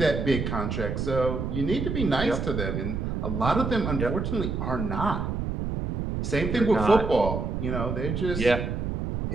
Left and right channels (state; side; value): noise; right; rumble, 2 dB below the sound